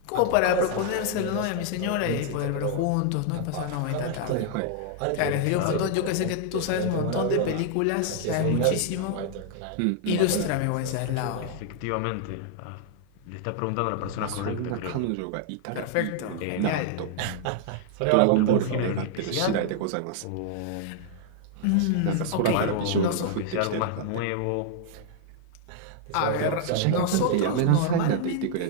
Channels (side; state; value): both; different; correlation 0.00